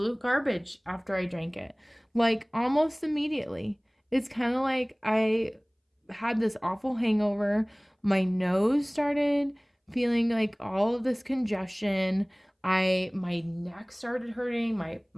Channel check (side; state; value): both; identical; correlation 1.00